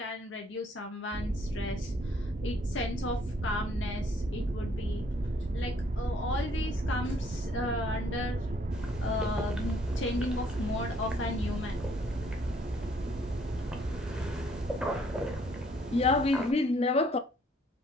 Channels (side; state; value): both; normal; correlation 0.64